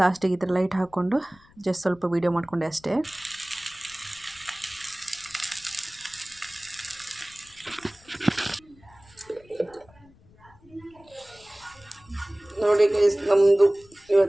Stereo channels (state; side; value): noise; left; rumble, 27 dB below the sound